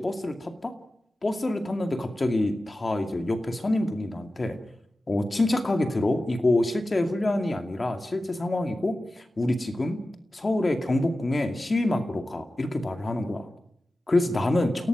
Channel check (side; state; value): both; normal; correlation 0.94